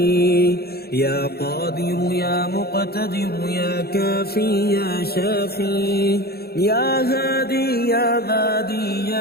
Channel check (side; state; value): right; late; 0.46 ms